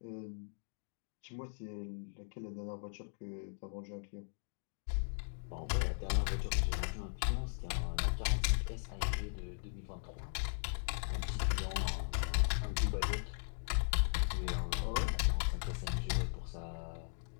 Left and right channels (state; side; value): silent; right; digital silence